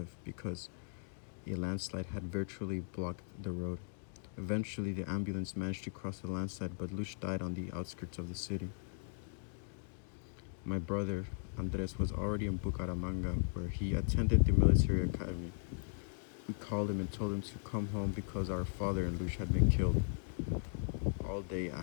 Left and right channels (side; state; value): right; silent; digital silence